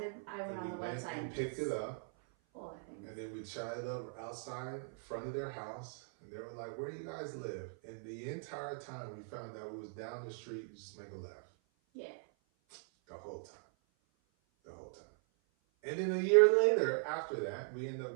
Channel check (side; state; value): left; silent; 51 dB below the other